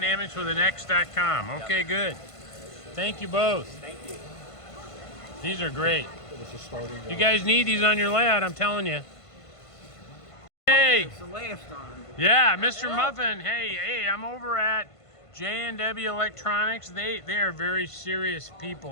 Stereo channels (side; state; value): right; late; 1.5 ms